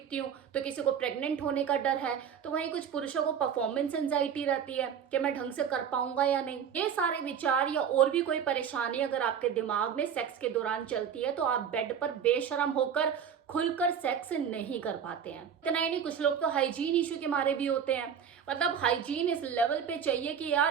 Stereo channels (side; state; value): left; quieter; 7.8 dB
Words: हूँ, तो किसी को प्रेग्नेंट होने का डर है, तो वहीं कुछ पुरुषों को परफॉर्मेंस एंजाइटी रहती है कि मैं ढंग से कर पाऊंगा या नहीं। ये सारे विचार या और भी कोई परेशानी अगर आपके दिमाग में सेक्स के दौरान चलती है तो आप बेड पर बेशर्म होकर खुलकर सेक्स नहीं कर पाते हैं। इतना ही नहीं, कुछ लोग तो हाइजीन इशू के मारे भी होते हैं। मतलब हाइजीन इस लेवल पे चाहिए कि